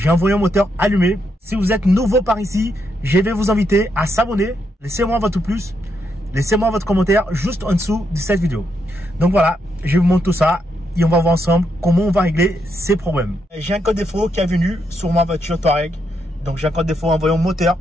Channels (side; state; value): both; normal; correlation 0.80